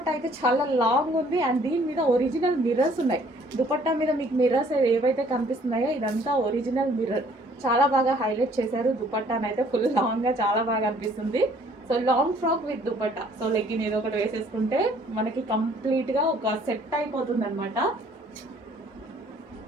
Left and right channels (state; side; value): normal; both; correlation 0.59